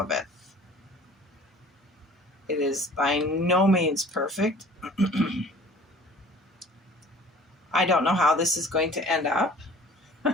it. It is by no means perfect. I don't know how this is going to end up,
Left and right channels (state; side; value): normal; both; correlation 0.48